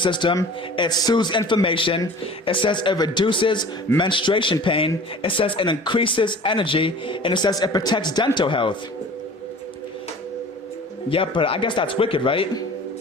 it soothes inflammation, it says it reduces menstruation pain, it says it increases energy, and it says it protects dental health. Yep, but I guess that's wicked, right?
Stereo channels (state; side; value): normal; both; correlation 0.43